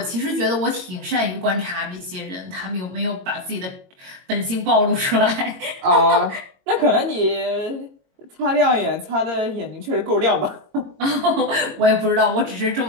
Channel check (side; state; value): left; late; 22 ms